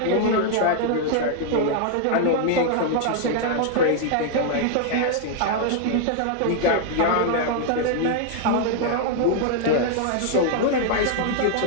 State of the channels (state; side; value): different; both; correlation -0.01